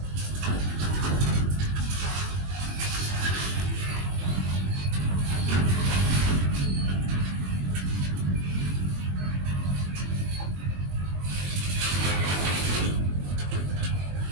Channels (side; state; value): left; late; 21 ms